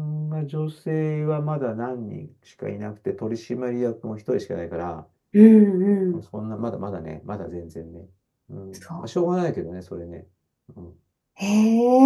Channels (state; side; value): identical; both; correlation 1.00